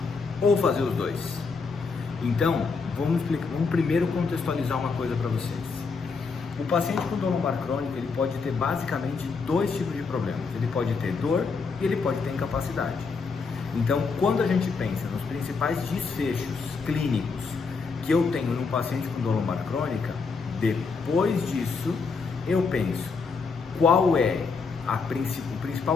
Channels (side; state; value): right; quieter; 4.8 dB